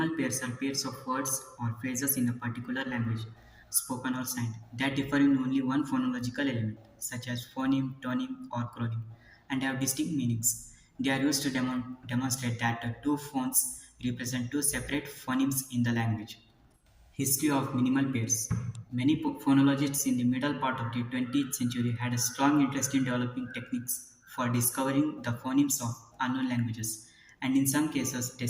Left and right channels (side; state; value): both; identical; correlation 1.00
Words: pairs are pairs of words or phrases in a particular language, spoken or signed, that differ in only one phonological element, such as phoneme, tонeme, or chroneme, and have distinct meanings. They are used to demonstrate that the two phones represent two separate phonemes in the language. History of minimal pairs. Many phonologists in the middle part of the 20th century had a strong interest in developing techniques for discovering the phonemes of unknown languages, and in some cases, they